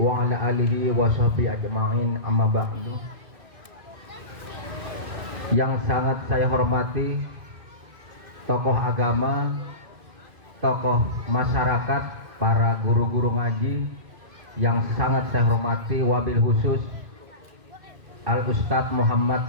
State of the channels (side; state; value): left; late; 2.0 ms